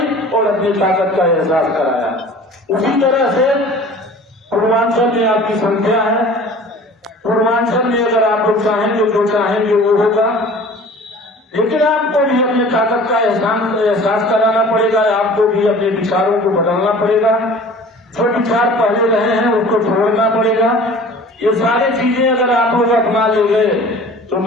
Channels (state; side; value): normal; both; correlation 0.44